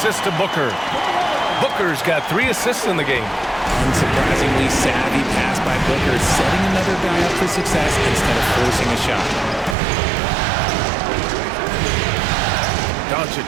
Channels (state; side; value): drops out; left; at 9.8 s